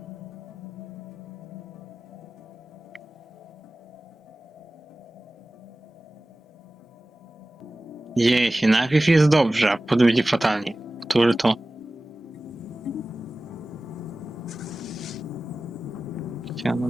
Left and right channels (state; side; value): normal; both; correlation 0.97